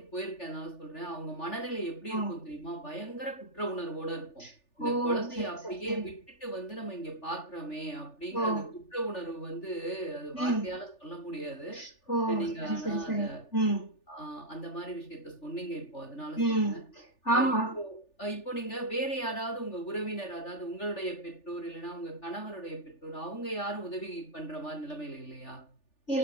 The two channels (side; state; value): right; late; 3.4 ms